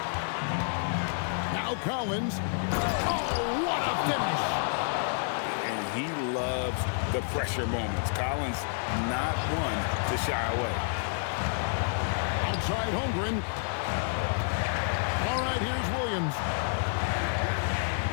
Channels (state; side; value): silent; right; 58 dB below the other